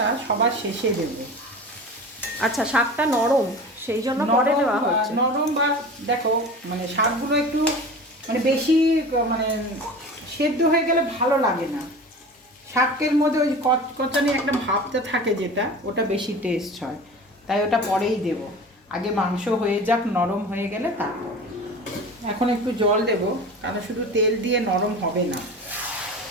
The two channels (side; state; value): both; normal; correlation 0.35